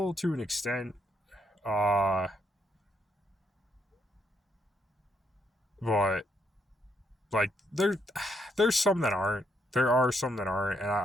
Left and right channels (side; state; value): both; normal; correlation 0.75